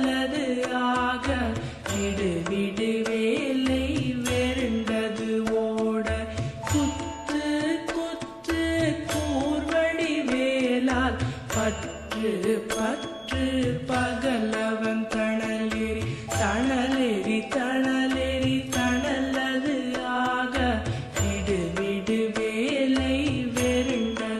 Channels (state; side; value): identical; both; correlation 1.00